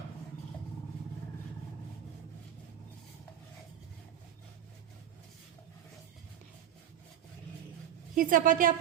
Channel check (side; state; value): left; quieter; 10.2 dB